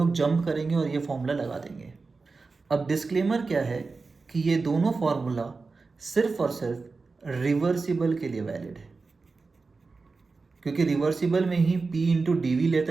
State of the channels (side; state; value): left; quieter; 4.1 dB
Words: जंप करेंगे और ये फॉर्मूला लगा देंगे। अब डिस्क्लेमर क्या है कि ये दोनों फॉर्मूला सिर्फ और सिर्फ रिवर्सिबल के लिए वैलिड है, क्योंकि रिवर्सिबल में ही P इंटू डी वी